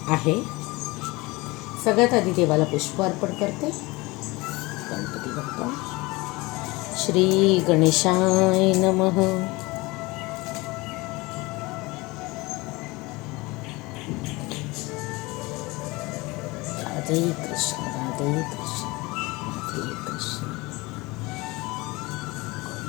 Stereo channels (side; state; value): right; quieter; 23.1 dB